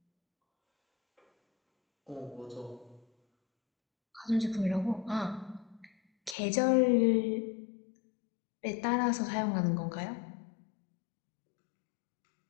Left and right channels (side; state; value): right; drops out; at 6.4 s